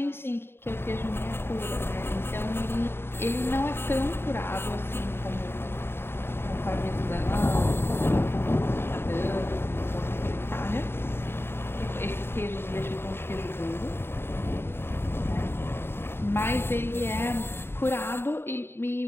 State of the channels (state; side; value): late; right; 0.11 ms